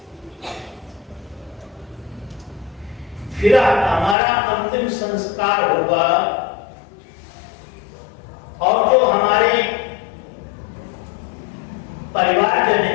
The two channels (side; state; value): right; drops out; at 4.2 s